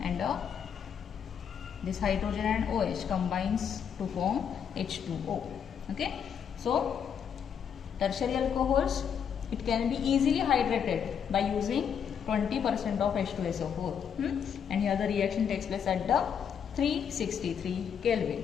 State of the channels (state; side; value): quieter; right; 7.7 dB